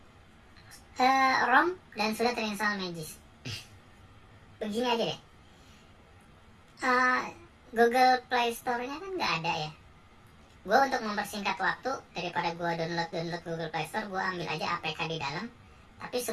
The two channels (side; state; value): both; identical; correlation 1.00